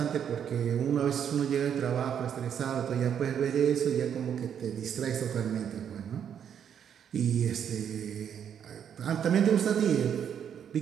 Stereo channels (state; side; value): quieter; left; 8.5 dB